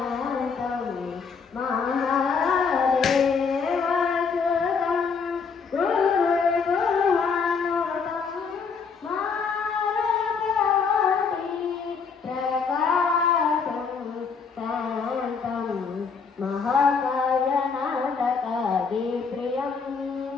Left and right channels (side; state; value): right; quieter; 5.5 dB